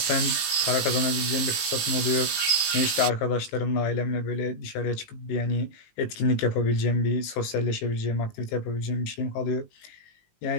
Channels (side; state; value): right; late; 18 ms